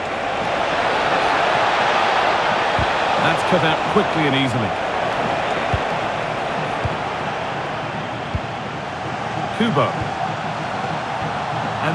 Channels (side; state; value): both; identical; correlation 1.00